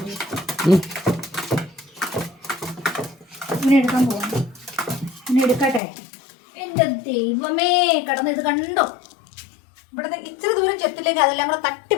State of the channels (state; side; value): drops out; right; at 5.8 s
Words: ഇങ്ങനെ എടുക്കാൻ പോവാം. ഇങ്ങനെ എടുക്കട്ടെ. എൻ്റെ ദൈവമേ, കടന്ന് ഇത് കണ്ടോ? ഇവിടുന്ന് ഇച്ചിരി ദൂരം ചെത്തിലേക്ക് അതെല്ലാം കൂടെ